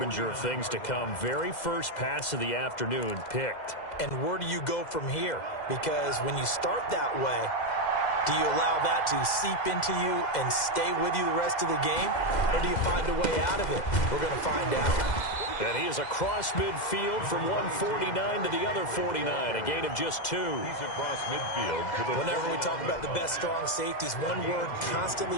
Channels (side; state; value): right; late; 2.0 ms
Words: of things to come. Very first pass of the afternoon picked. And where do you go from here? Because when you start that way, do you allow that to seep into you and stay with you the rest of the game? Or do you find a way out of it? We're going to find out. And he is across midfield from 149 to the other 49, a gain of just 2. He's across midfield to the... Whenever we talk about the best strong safeties, one word